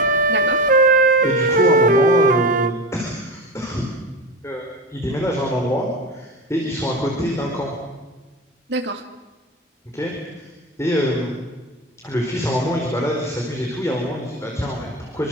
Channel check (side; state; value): both; normal; correlation 0.26